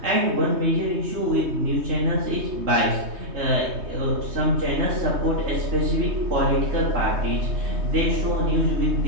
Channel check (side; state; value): left; late; 3.2 ms